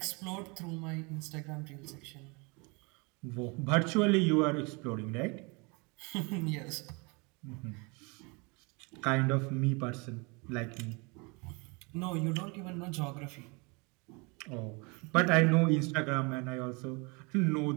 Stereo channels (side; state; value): left; quieter; 29.5 dB